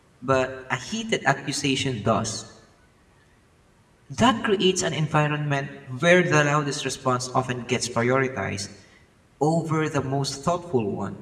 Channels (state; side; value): identical; both; correlation 1.00